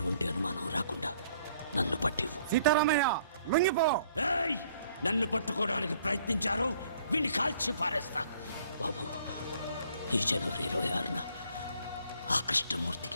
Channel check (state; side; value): inverted; both; correlation -0.62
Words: అనుమానం రాకుండా నన్ను పట్టివు. సీతారామయ్య లొంగిపో. ఏయ్! నన్ను పట్టుకోవడానికి ప్రయత్నించారు, వీడిని కాల్చి పారేస్తా. బాబు, ఈ జనవరి 26న ఆ